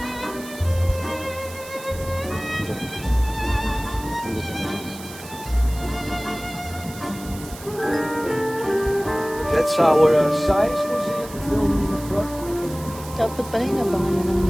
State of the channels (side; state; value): right; noise; hiss, 16 dB below the sound